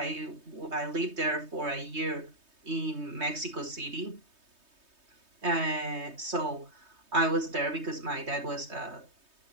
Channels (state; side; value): late; left; 3.2 ms